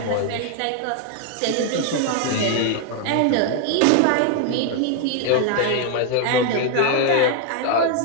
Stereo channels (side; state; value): both; different; correlation 0.00